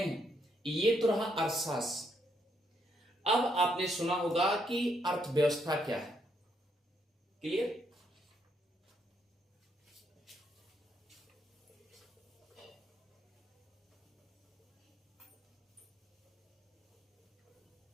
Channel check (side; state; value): both; normal; correlation 0.75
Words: ये तो रहा अर्थशास्त्र। अब आपने सुना होगा कि अर्थव्यवस्था क्या है। क्लियर?